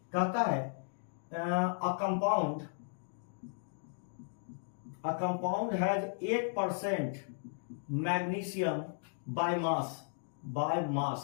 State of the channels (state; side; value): silent; right; digital silence